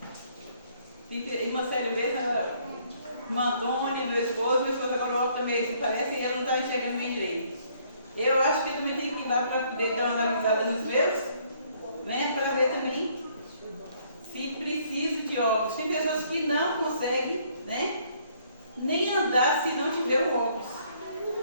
Irmã Célia mesmo, irmã Antônia, meu esposo agora o óculos também assim, parece, e ela não está enxergando bem direito. Eu acho que eu também tenho que ir lá para poder dar uma analisada nos meus, né? Para ver também se preciso de óculos. Tem pessoas que não conseguem, né? Nem andar se não tiver o óculos.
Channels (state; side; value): inverted; both; correlation -0.65